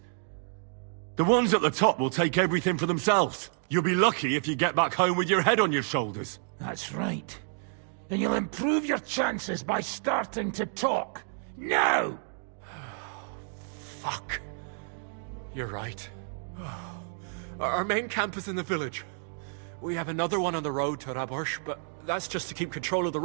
The ones at the top will take everything for themselves. You'll be lucky if you get back home with your head on your shoulders. That's right. And you'll improve your chances by starting to talk. Now! Fuck. You're right. Our main camp is in the village. We have another one on the road to Raborsh, but that's just to keep control of the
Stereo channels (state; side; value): silent; left; 58 dB below the other